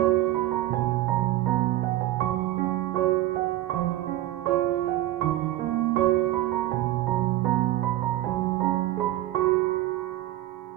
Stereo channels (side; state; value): left; quieter; 15.1 dB